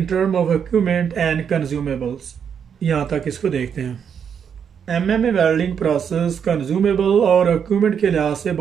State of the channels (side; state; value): left; quieter; 7.6 dB